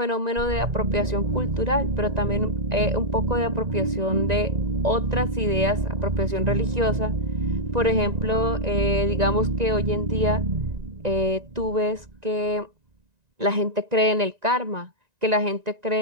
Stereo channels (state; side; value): late; left; 1.9 ms